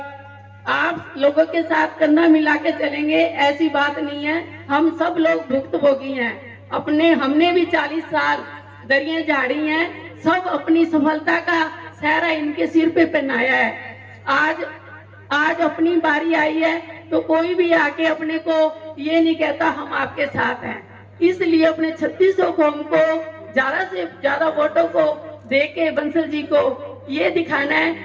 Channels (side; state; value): both; identical; correlation 1.00